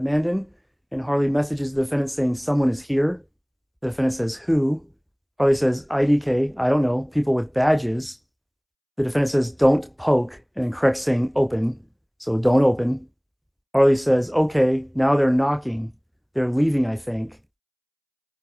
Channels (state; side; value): identical; both; correlation 1.00